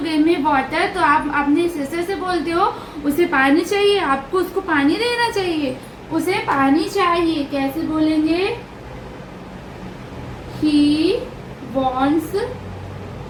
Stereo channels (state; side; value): identical; both; correlation 1.00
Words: give me water, तो आप अपनी सिस्टर से बोलते हो उसे पानी चाहिए, आपको उसको पानी देना चाहिए, उसे पानी चाहिए। कैसे बोलेंगे, he wants